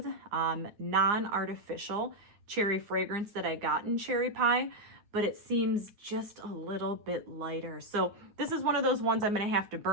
non-artificial cherry fragrance that I got in cherry pie, but it seems just a little bit lighter. So this is one of those ones I'm going to have to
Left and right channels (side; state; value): left; late; 9.8 ms